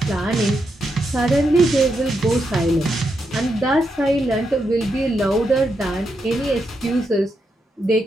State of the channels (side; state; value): both; normal; correlation 0.83